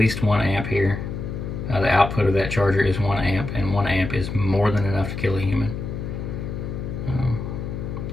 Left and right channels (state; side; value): noise; left; hum, 6 dB below the sound